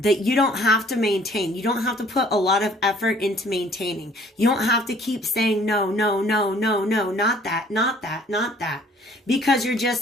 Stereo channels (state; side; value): normal; both; correlation 0.56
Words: you don't have to maintain. You don't have to put a lot of effort into maintaining. You don't have to keep saying, no, no, no, no, no, not that, not that, not that. Because you're